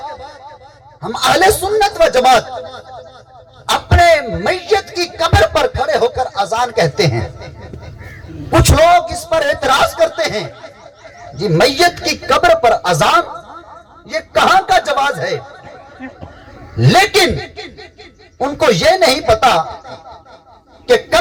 ہم اہل سنت و جماعت اپنے میت کی قبر پر کھڑے ہو کر اذان کہتے ہیں۔ کچھ لوگ اس پر اعتراض کرتے ہیں، جی میت کی قبر پر اذان یہ کہاں کا جواز ہے؟ لیکن ان کو یہ نہیں پتا کہ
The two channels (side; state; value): both; identical; correlation 1.00